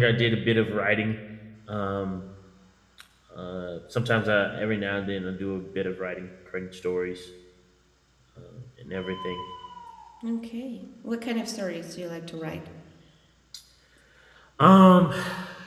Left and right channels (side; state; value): both; identical; correlation 1.00